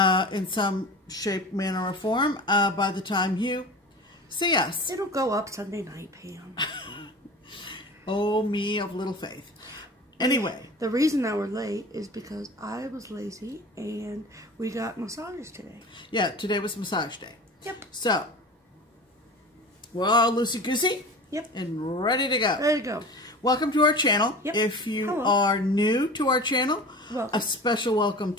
some shape, manner, or form by the time you see us. It'll go up Sunday night, Pam. Oh, me of little faith. Anyway. The reason that we're late is because I was lazy and we got massages today. Yeah, today was massage day. Yep. So, we're all loosey-goosey. Yep. And ready to go. Ready to go. Welcome to our channel. Yep. If you Hello. are new to our channel, welcome. A special welcome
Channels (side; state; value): both; normal; correlation 0.36